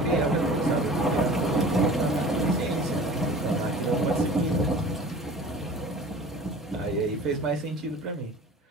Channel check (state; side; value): normal; both; correlation 0.42